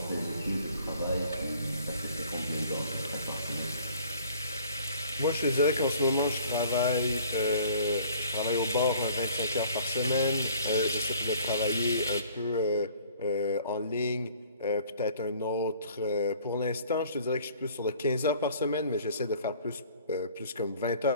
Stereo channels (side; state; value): both; inverted; correlation -0.54